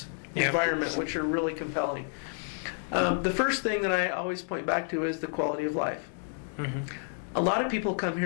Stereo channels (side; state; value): right; silent; 58 dB below the other